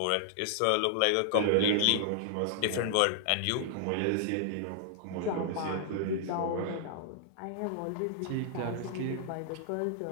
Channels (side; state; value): both; different; correlation -0.01